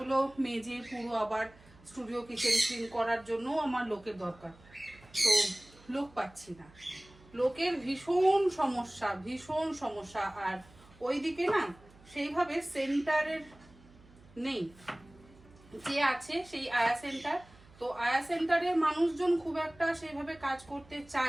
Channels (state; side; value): noise; right; hum, 25 dB below the sound